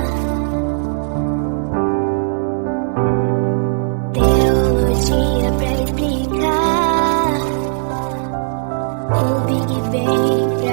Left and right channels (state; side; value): silent; left; digital silence